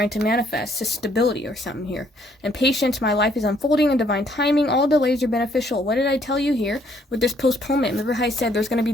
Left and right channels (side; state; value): both; normal; correlation 0.66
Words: to manifest, so stability or something here. And patience, my life is unfolding in divine timing. All delays are beneficial. What did I tell you here with this postponement? Remember how I said there's going to be